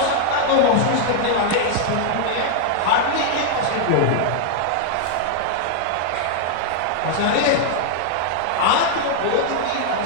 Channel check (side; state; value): both; different; correlation -0.01